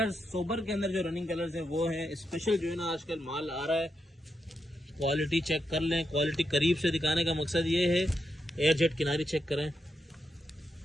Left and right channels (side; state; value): both; normal; correlation 0.84